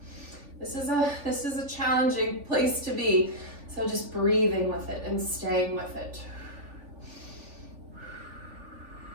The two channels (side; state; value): left; late; 3.5 ms